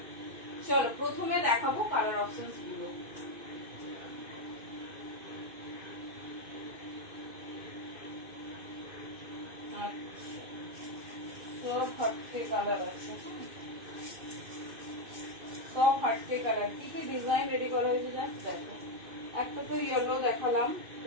চলো প্রথমে দেখাবো কালার অপশনস গুলো। সব হাটকে কালার আছে, সব হাটকে কালার। কি কি ডিজাইন রেডি করা হয়েছে জাস্ট দেখো। একটা তো ইয়েলো দেখালাম,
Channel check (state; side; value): late; left; 2.6 ms